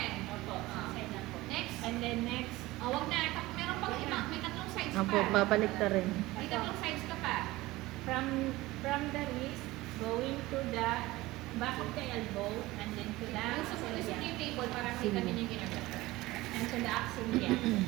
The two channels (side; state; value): left; quieter; 19.0 dB